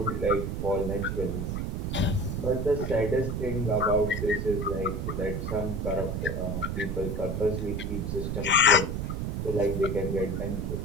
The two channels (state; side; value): noise; right; rumble, 2 dB below the sound